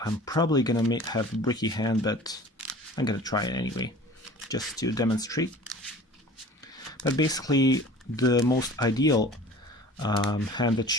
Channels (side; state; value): both; normal; correlation 0.43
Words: I'm probably gonna have a bricky hand, but I'm gonna try it anyway, just to demonstrate. But basically, the most ideal hand